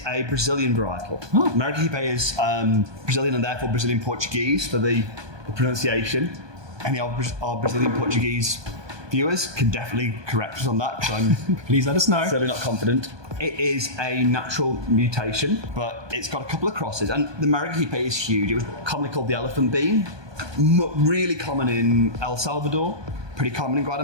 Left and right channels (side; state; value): left; late; 1.2 ms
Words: a Brazilian varietal. Oh. Maragogipe is Brazilian and therefore Brazilian Portuguese for the pronunciation. Any of our Brazilian Portuguese viewers can definitely correct us on that because I'm Please let us know. certainly not confident. It is a natural mutation, but it's got a couple of crosses. And the Maragogipe is huge. It was commonly called the elephant bean. Really common in El Salvador, pretty common in